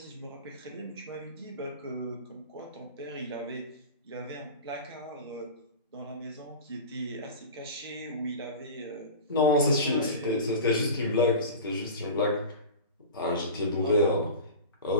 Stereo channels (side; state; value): both; inverted; correlation -0.32